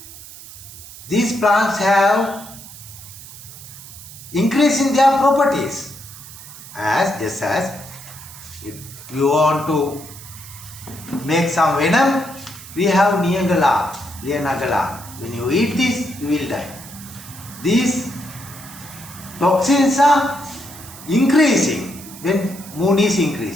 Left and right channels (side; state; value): right; noise; hiss, 16 dB below the sound